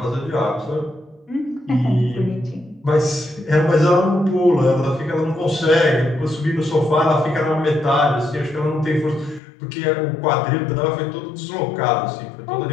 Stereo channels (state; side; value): drops out; right; at 9.4 s